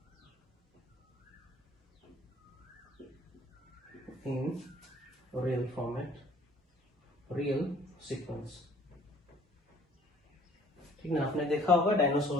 in real format, real sequence. ठीक ना, आपने देखा होगा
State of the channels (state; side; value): normal; both; correlation 0.55